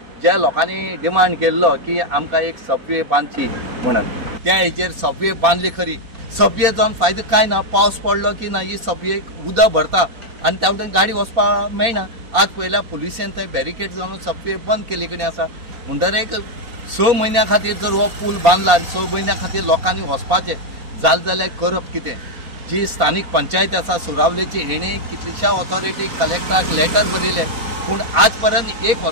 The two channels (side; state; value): left; late; 4.1 ms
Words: ज्या लोकांनी डिमांड केल्लो की आमकां एक सबवे बांदची म्हणून त्या हेचेर सबवे बांदली खरी. सबवे जावन फायदो काय ना. पावस पडलो की ना ही सबवेक उदक भरता आणि त्या वटेन गाडी वचपाक मेळना. आज पयल्या पुलिसेन थंय बॅरिकेड जावन सबवे बंद केली कडेन आसा. म्हणटरेक 6 म्हयन्या खातीर जर हो पूल बांदला आनी 6 म्हयन्या खातीर लोकांनी वचपाचें जालें जाल्यार करप कितें. जी स्थानीक पंचायत आसा सुरावलेची हेणे कितलेशा ऑथॉरिटीक कलेक्टराक लेटर बरयलें पूण आज पर्यंत एक